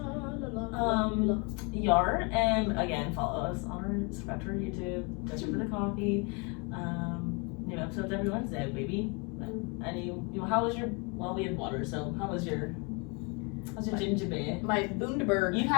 Yar, and again, follow us on subscribe to our YouTube, Just for the Coffee. New episodes every Wednesday, baby. And how was your? Well, we had water, so how's your ginger beer? My Bundaberg. You've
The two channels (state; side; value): quieter; right; 31.9 dB